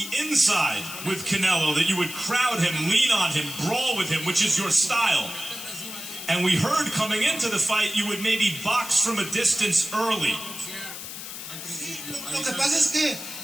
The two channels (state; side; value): noise; left; hiss, 10 dB below the sound